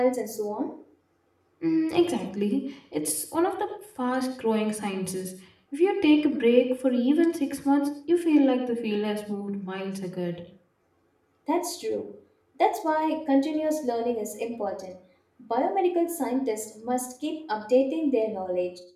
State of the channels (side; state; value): both; identical; correlation 1.00